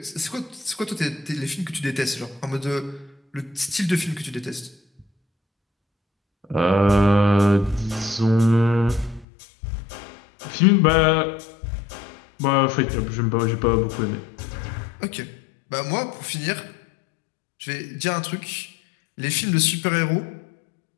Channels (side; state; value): right; drops out; at 9.2 s